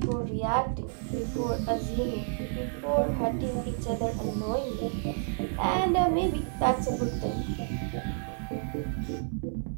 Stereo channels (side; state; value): left; silent; 58 dB below the other